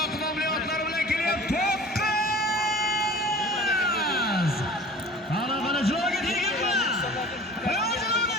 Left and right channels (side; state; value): both; normal; correlation 0.43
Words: nomli otlar bilan kelyapti. Qani joyga tegingmi?